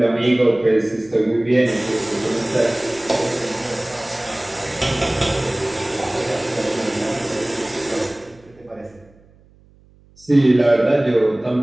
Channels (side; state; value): right; noise; hum, 29 dB below the sound